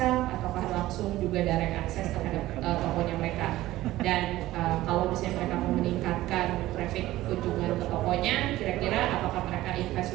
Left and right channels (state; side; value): quieter; left; 16.1 dB